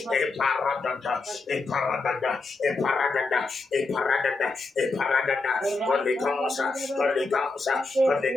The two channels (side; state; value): right; quieter; 3.6 dB